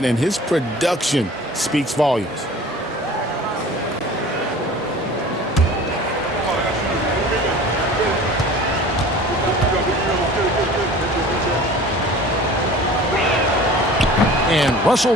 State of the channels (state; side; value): normal; both; correlation 0.43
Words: and his production speaks volumes. And Russell